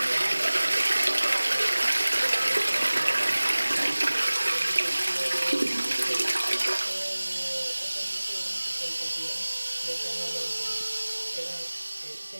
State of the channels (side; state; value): both; inverted; correlation -1.00